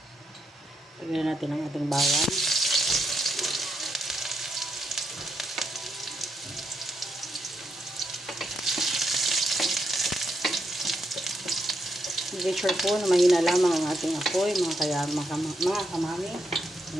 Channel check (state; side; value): normal; both; correlation 0.80